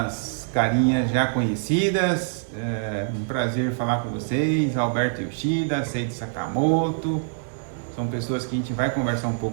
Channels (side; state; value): left; silent; digital silence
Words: carinhas já conhecidas. Um prazer falar com vocês. Alberto Yoshida, Seiji Sakamoto. São pessoas que a gente vai conversar um